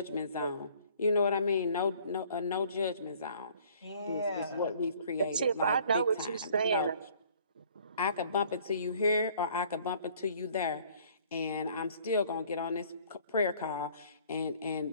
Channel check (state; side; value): inverted; both; correlation -0.56